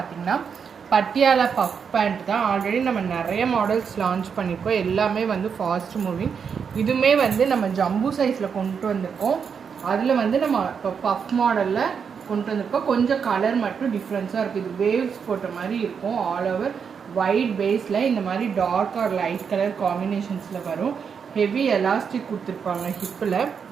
பட்டியாலா பஃப் பேண்ட் தான். ஆல்ரெடி நம்ம நிறைய மாடல்ஸ் லான்ச் பண்ணியிருக்கோம். எல்லாமே வந்து ஃபாஸ்ட் மூவிங். இதுவுமே வந்து நம்ம ஜம்பு சைஸில் கொண்டு வந்திருக்கோம். அதில் வந்து நம்ம இப்போ பஃப் மாடலில் கொண்டு வந்திருக்கோம். கொஞ்சம் கலர் மட்டும் டிஃப்ரென்ஸாக இருக்குது. இது வேவ்ஸ் போட்ட மாதிரி இருக்கும். ஆல் ஓவர் ஒயிட் பேஸில் இந்த மாதிரி டார்க் ஆர் லைட் கலர் காம்பினேஷன்ஸில் வரும். ஹெவி எலாஸ்டிக் கொடுத்துருப்பாங்க. ஹிப்பில்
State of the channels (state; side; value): quieter; left; 6.6 dB